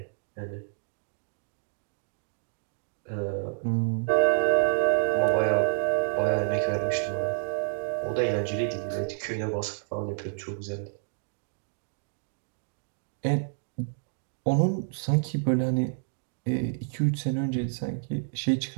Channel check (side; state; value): left; silent; digital silence